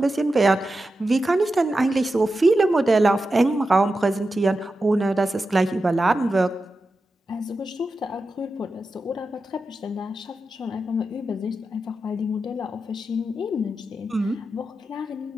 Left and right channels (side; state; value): both; normal; correlation 0.90